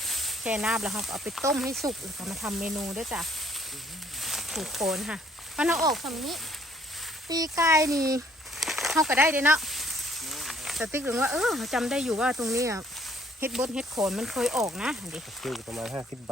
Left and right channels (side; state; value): both; normal; correlation 0.62